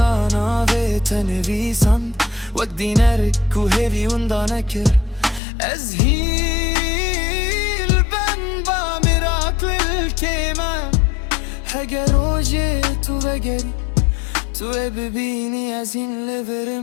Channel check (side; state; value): right; drops out; at 5.4 s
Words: و تنویسان وک دینر کو هیوی وندا نکر از هیل بن با مراکل الکیمه هگر روژه تو بگری تو ببینی از این